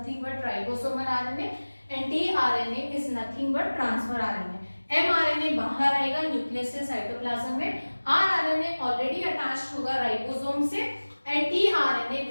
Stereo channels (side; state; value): both; inverted; correlation -1.00